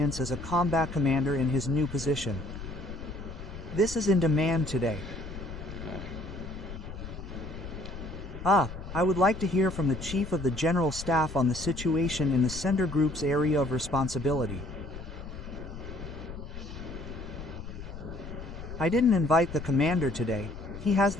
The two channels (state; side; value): noise; left; rumble, 11 dB below the sound